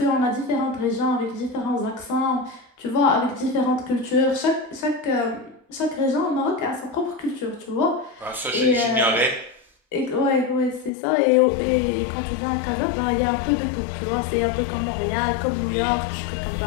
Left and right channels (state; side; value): drops out; right; at 10.9 s